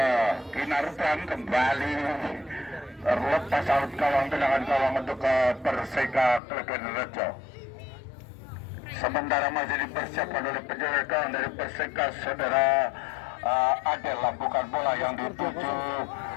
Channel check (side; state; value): right; drops out; at 6.4 s